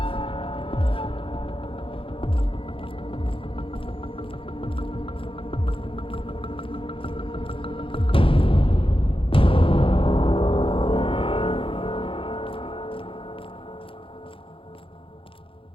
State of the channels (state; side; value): late; right; 0.26 ms